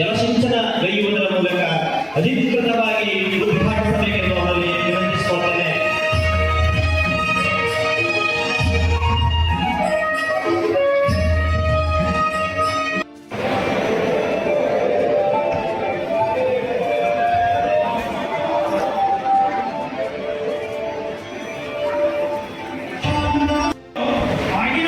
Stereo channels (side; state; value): both; identical; correlation 1.00